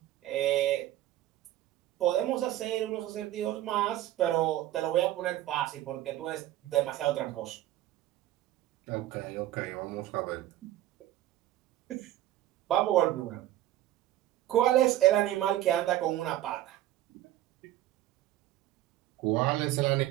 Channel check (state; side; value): quieter; left; 14.0 dB